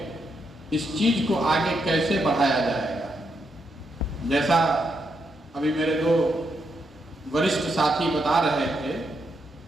इस चीज को आगे कैसे बढ़ाया जाएगा। जैसा अभी मेरे 2 वरिष्ठ साथी बता रहे थे,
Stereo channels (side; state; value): both; normal; correlation 0.80